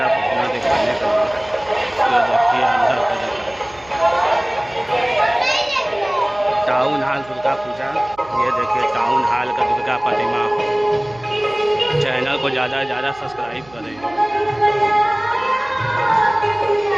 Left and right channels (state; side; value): noise; right; hum, 25 dB below the sound